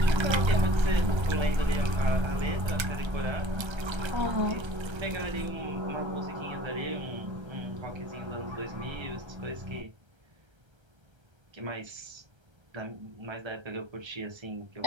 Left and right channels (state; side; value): late; left; 1.3 ms